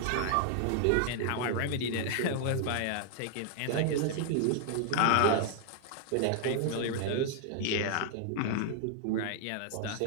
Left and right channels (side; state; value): both; different; correlation 0.00